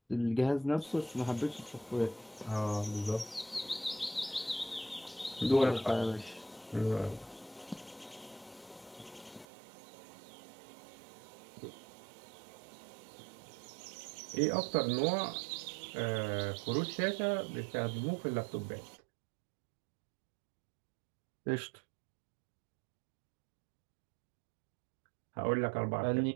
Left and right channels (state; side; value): drops out; left; at 9.5 s